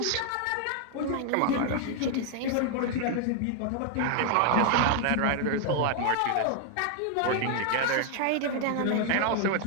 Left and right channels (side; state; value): both; different; correlation 0.00